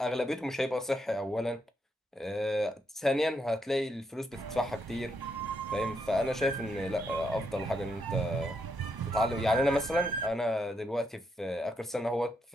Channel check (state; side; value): normal; both; correlation 0.79